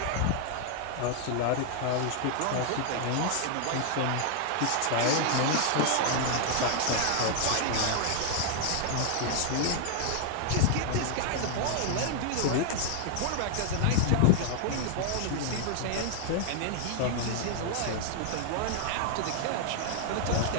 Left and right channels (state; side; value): different; both; correlation 0.00